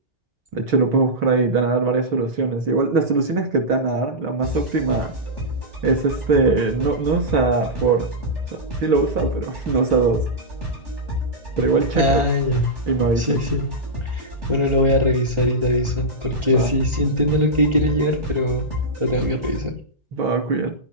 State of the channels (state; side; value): late; left; 1.4 ms